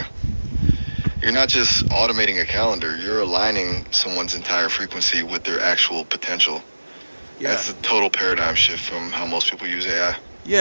You're not just automating a calendar, you're aligning someone's entire frequency with their actual potential. Yeah. That's a total paradigm shift from how most people use AI.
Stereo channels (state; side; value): inverted; both; correlation -1.00